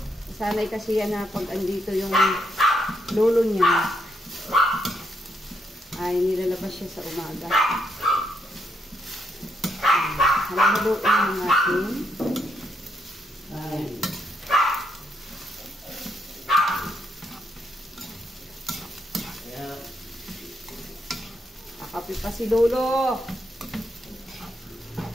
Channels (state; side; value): normal; both; correlation 0.77